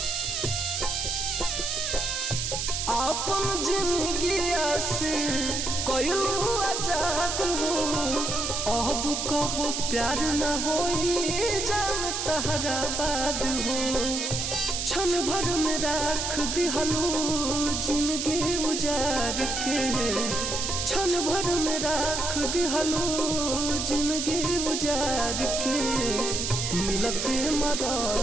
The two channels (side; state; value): right; noise; hiss, 2 dB below the sound